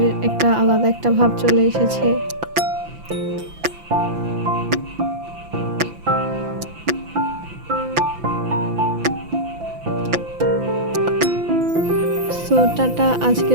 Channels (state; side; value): late; left; 5.9 ms